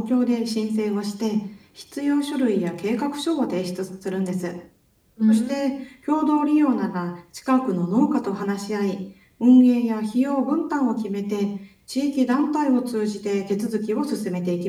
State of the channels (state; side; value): identical; both; correlation 1.00